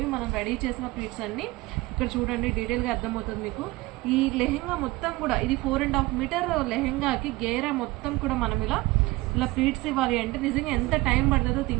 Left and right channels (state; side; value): quieter; left; 21.0 dB